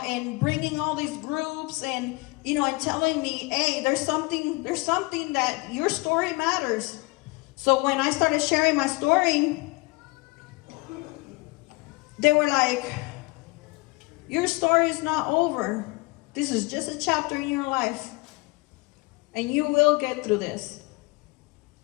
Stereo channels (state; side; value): quieter; right; 24.9 dB